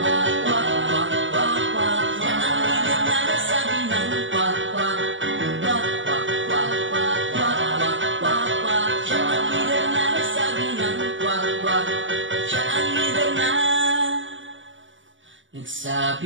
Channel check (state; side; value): late; left; 0.56 ms